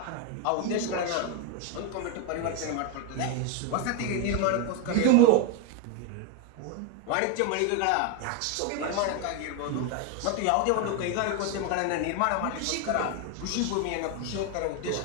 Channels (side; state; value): both; different; correlation 0.01